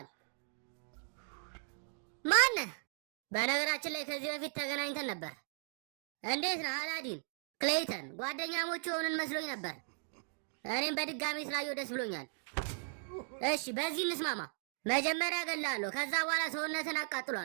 ማነህ? በነገራችን ላይ ከዚህ በፊት ተገናኝተን ነበር። እንዴት ነህ አላዲን? ክሌይተን ጓደኛሞች የሆንን መስሎኝ ነበር። እኔም በድጋሚ ስላየው ደስ ብሎኛል። እሺ በዚህ እንስማማ። መጀመሪያ እገልሃለሁ፣ ከዛ በኋላ ሰውነትን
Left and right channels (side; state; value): left; silent; digital silence